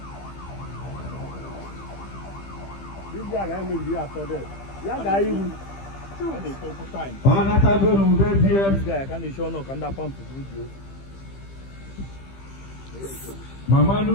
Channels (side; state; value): right; late; 15 ms